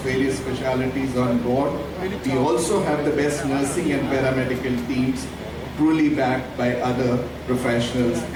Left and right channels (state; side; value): identical; both; correlation 1.00